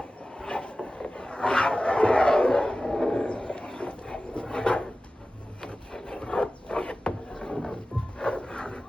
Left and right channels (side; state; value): both; normal; correlation 0.95